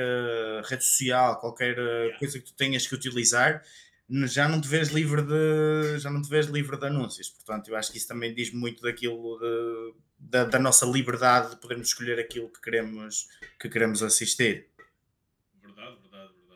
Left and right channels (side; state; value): both; identical; correlation 1.00